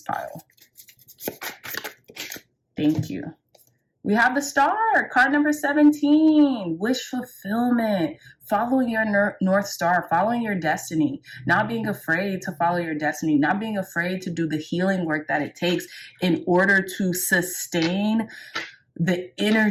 pile. Thank you. We have the Star, card number 17, wish fulfillment, following your North Star, following your destiny, not being afraid to follow your destiny, not being afraid to do the healing work that it takes in order to sustain the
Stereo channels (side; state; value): both; identical; correlation 1.00